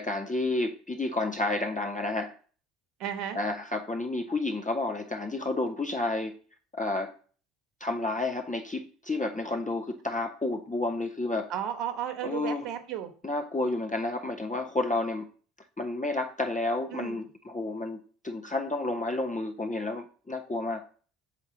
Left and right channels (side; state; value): both; normal; correlation 0.57